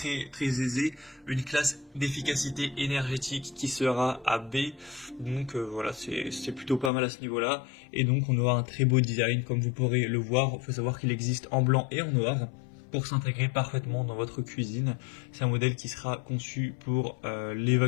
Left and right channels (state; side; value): drops out; right; at 6.9 s